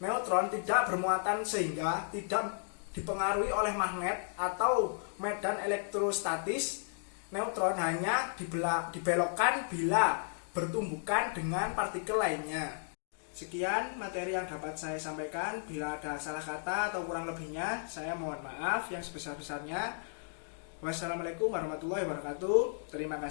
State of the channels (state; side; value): silent; right; digital silence